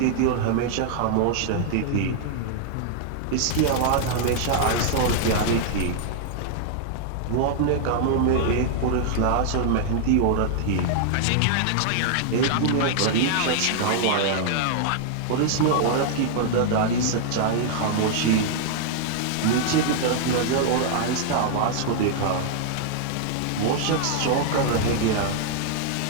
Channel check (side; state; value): both; different; correlation -0.01